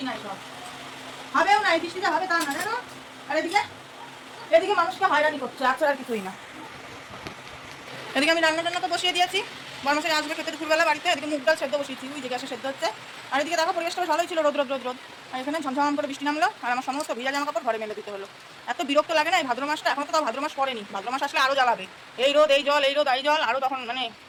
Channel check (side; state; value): both; identical; correlation 1.00